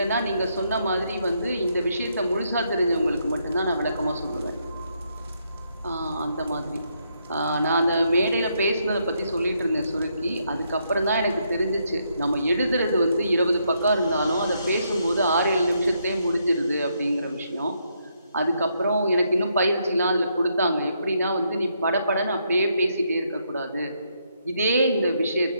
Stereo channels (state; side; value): inverted; both; correlation -0.76